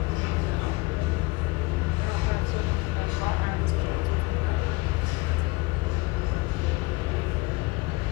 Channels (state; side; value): quieter; right; 23.5 dB